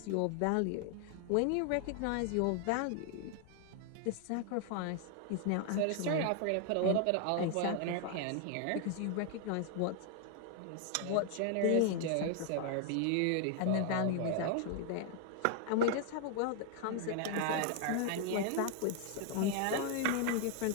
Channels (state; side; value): different; both; correlation 0.00